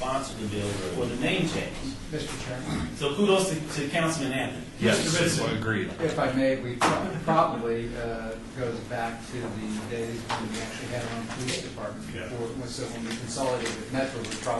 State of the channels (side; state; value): both; identical; correlation 1.00